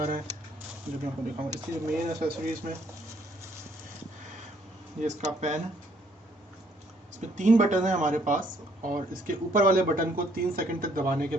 ہیں جو میں آپ کو دکھاؤں. اس کی مین اسیسریز میں یہ اس کا پین ہے. اس میں 3 بٹن ہیں ہمارے پاس, اور اس کے اوپر والے بٹن کو 3 سیکنڈ تک دبانے کے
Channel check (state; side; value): normal; both; correlation 0.66